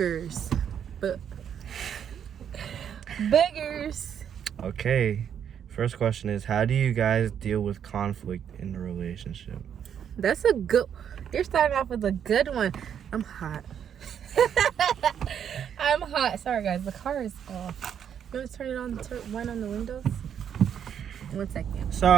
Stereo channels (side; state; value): left; quieter; 8.6 dB